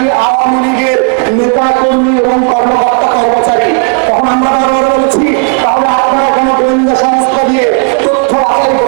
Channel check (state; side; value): quieter; left; 37.8 dB